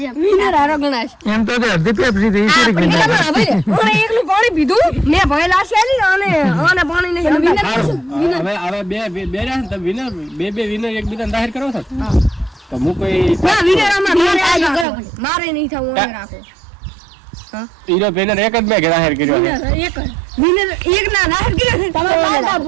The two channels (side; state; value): left; drops out; at 14.9 s